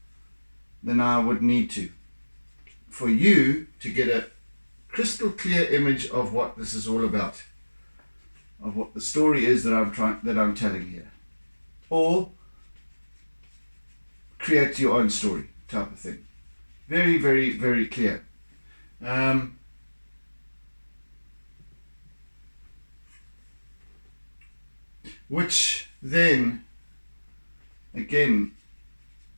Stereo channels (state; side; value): inverted; both; correlation -1.00